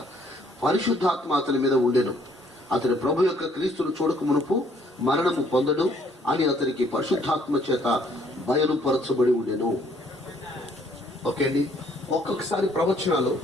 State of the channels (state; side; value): normal; both; correlation 0.64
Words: పరిశుద్ధాత్మ అతని మీద ఉండెను. అతని ప్రభు యొక్క క్రీస్తును చూడక మునుపు మరణము పొందడు అని అతనికి పరిశుద్ధాత్మ చేత బయలుపరచబడి ఉండెను. ఓకే అండి. ఒక్కొక్కసారి ప్రవచనాలు